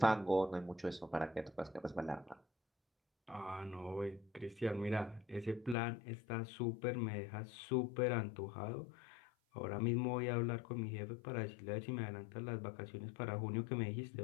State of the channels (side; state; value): right; drops out; at 5.8 s